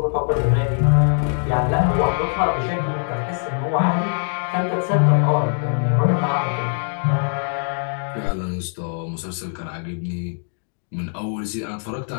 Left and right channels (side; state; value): right; silent; digital silence